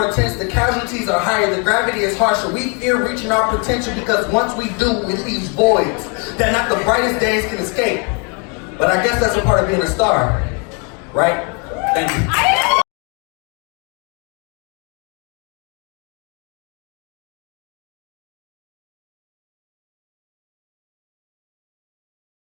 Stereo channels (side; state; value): right; quieter; 35.6 dB